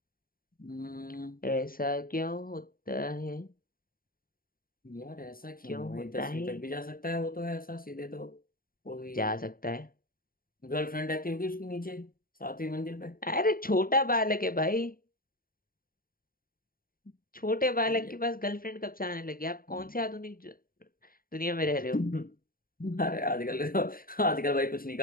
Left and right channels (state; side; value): late; right; 0.42 ms